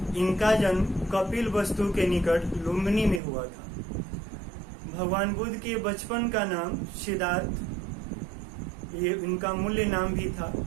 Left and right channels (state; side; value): drops out; left; at 3.2 s